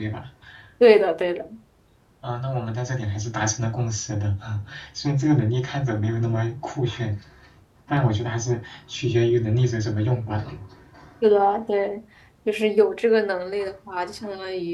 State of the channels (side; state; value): both; identical; correlation 1.00